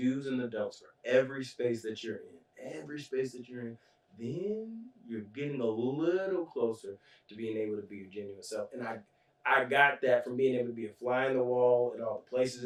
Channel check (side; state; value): both; identical; correlation 1.00